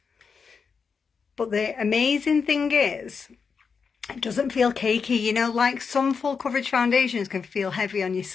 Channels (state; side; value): quieter; right; 5.7 dB